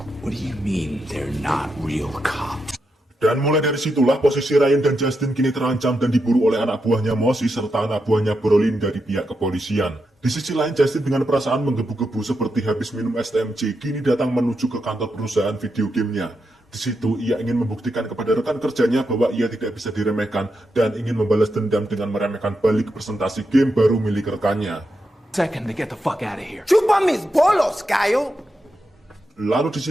What do you mean they're not real cops? Dan mulai dari situlah posisi Ryan dan Justin kini terancam dan diburu oleh anak buahnya Mosi serta anak buahnya Brolin dari pihak kepolisian. Di sisi lain, Justin dengan perasaan menggebu-gebu seperti habis minum STMJ kini datang menuju ke kantor perusahaan video gamenya. Di situ ia ingin membuktikan kepada rekan kerjanya bahwa ia tidak bisa diremehkan dan ingin membalas dendam dengan meremehkan balik presentasi game baru milik rekannya. Second to get the fuck out of here. Chupa mis bolos, Cayo. Lalu di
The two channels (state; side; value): normal; both; correlation 0.85